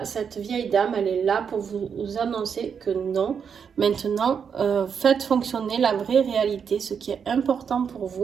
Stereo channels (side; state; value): left; quieter; 6.9 dB